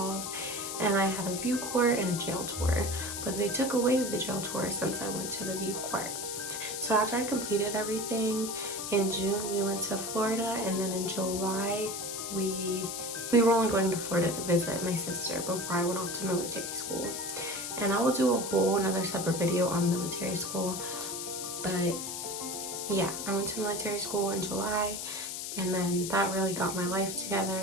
And I had a view court and a jail tour, but they took away the jail tour since I went to the view court. So after I completed everything, in June we went to Florida, and then in July we were only going to Florida to visit my sister before I went off to military school. And I will do a whole another separate video on military school. But yeah, I went to military school in July, and then that really got my life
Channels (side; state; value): left; noise; hiss, 5 dB below the sound